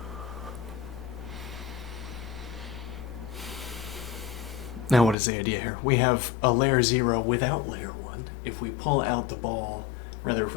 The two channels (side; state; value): right; drops out; at 5.2 s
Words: Now what is the idea here? We have a layer 0 without layer 1. If we pull out the ball, rather if